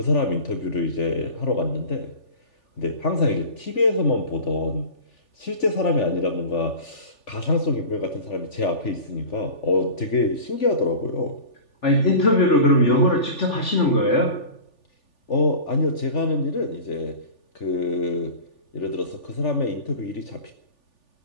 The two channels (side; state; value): right; late; 3.4 ms